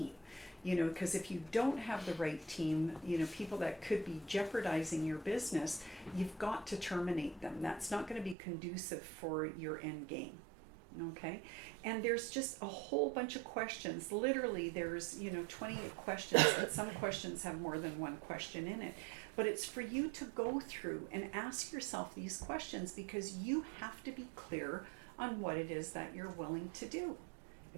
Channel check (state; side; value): drops out; left; at 8.3 s